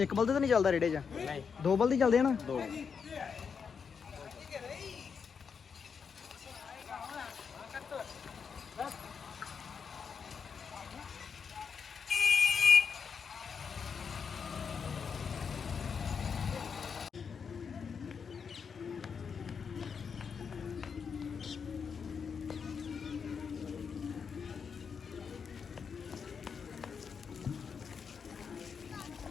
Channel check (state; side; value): quieter; right; 6.2 dB